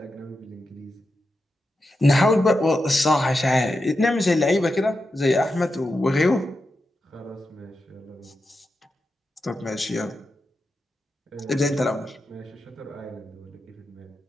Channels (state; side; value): normal; both; correlation 0.89